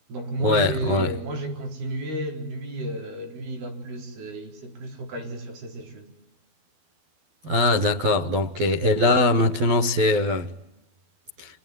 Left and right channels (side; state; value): left; late; 12 ms